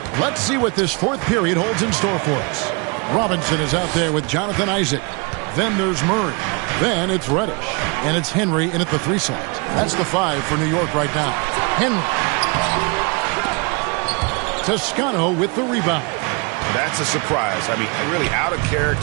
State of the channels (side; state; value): left; quieter; 31.0 dB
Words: let's see what this 4th period holds in store for us. Robinson is out there with Jonathan Isaac. Then there's Murray. Then it's Reddish. And it's Henry in at the 3 slot. That's the 5 for New York right now. Henry. Toscano with the rebound. That's a surprise. I mean, really out of